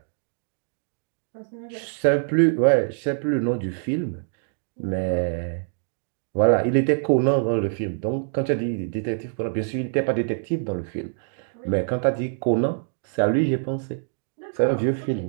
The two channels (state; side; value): silent; left; digital silence